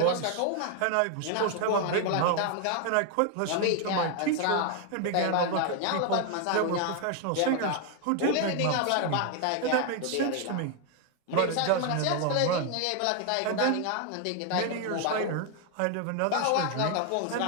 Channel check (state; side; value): different; both; correlation 0.01